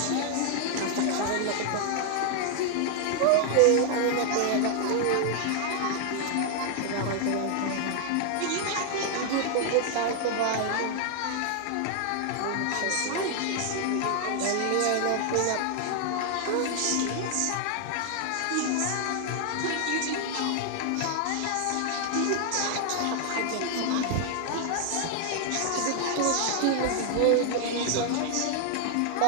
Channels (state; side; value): different; both; correlation 0.00